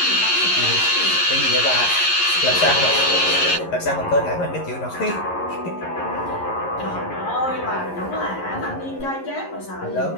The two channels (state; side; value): late; right; 11 ms